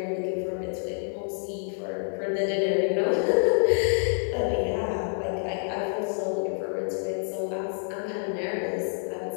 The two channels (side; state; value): right; silent; digital silence